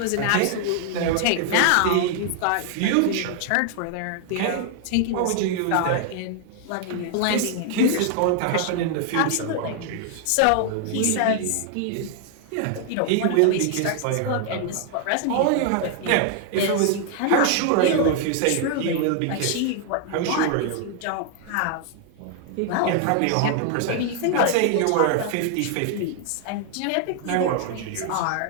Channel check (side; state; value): both; different; correlation 0.00